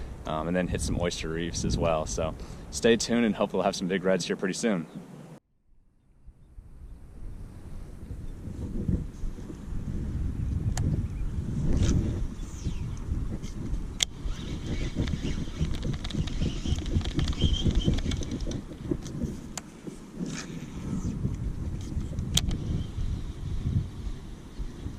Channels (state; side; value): identical; both; correlation 1.00